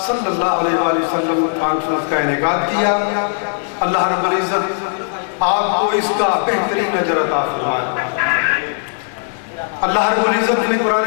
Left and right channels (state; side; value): silent; right; 68 dB below the other